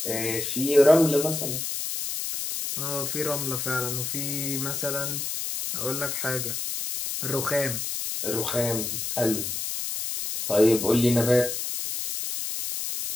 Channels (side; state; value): left; noise; hiss, 3 dB below the sound